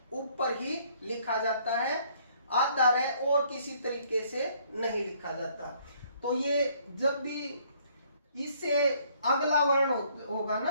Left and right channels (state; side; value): inverted; both; correlation -0.63